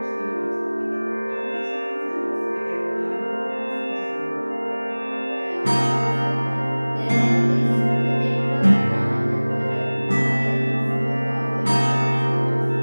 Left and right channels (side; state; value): both; inverted; correlation -1.00